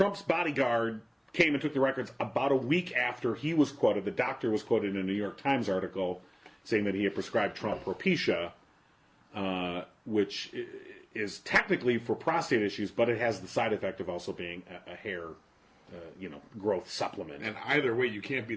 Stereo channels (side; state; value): both; identical; correlation 1.00